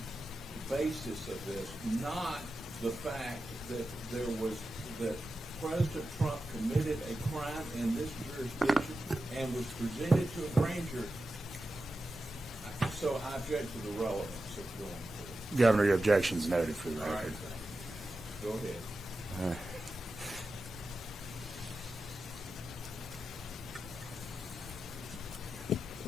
basis of this, not the fact that President Trump committed a crime in this jurisdiction and was presented to a grand jury. So I object to the relevance of going forward. Governor, your objection's noted for the All right, record. thank you. Go ahead.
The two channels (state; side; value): normal; both; correlation 0.91